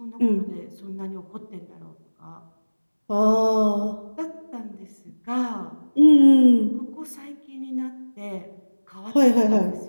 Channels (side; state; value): both; inverted; correlation -1.00